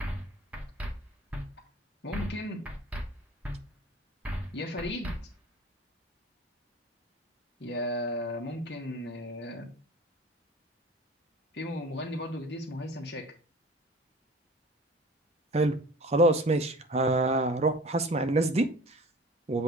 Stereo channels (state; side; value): normal; both; correlation 0.43